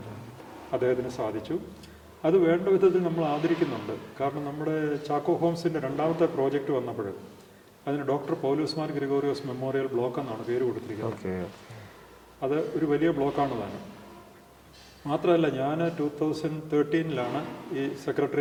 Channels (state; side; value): identical; both; correlation 1.00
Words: അദ്ദേഹത്തിന് സാധിച്ചു. അത് വേണ്ട വിധത്തിൽ നമ്മൾ ആദരിക്കുന്നുണ്ട്. കാരണം നമ്മുടെ ചാക്കോ ഹോംസിൻ്റെ രണ്ടാമത്തെ പ്രോജക്റ്റ് വന്നപ്പോൾ അതിന് ഡോക്ടർ പൗലോസ് മാർ ഗ്രിഗോറിയോസ് മെമ്മോറിയൽ ബ്ലോക്ക് എന്നാണ് പേര് കൊടുത്തിരിക്കുന്നത്. അത് ഒരു വലിയ ബ്ലോക്കാണ് താനും. മാത്രമല്ല, ഞാൻ 2013 ഈ